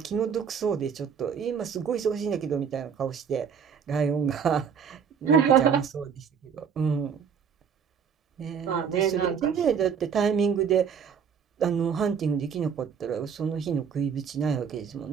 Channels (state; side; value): quieter; left; 7.0 dB